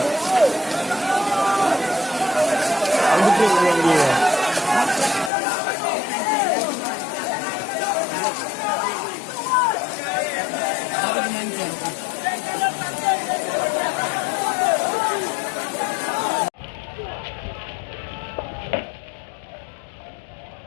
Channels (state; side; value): drops out; right; at 5.3 s